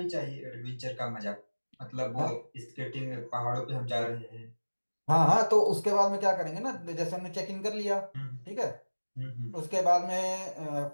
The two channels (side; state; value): both; inverted; correlation -1.00